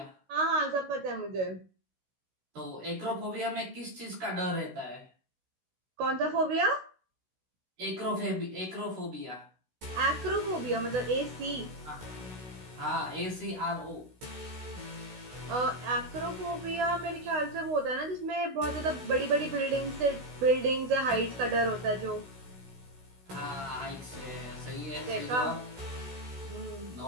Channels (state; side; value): late; left; 16 ms